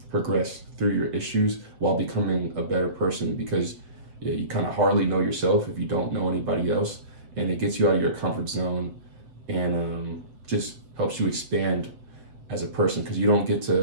progress through your issues while becoming a better person, because you kind of hardly know yourself if you don't know anybody else, and it gets you out of your comfort zone and just helps you expand as a person, because you don't get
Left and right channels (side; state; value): left; late; 7.8 ms